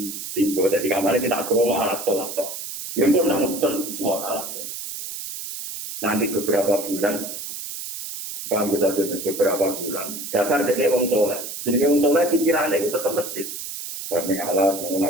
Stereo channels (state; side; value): noise; right; hiss, 8 dB below the sound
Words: timbul dari kamar kita aku mau alat sholat. Yang pun nak mau alat. Nanti beberapa bulan, bang kita beberapa bulan. Dasar jadi orang soleh. Jadi orang soleh pikirannya itu tetap masjid. Karena Allah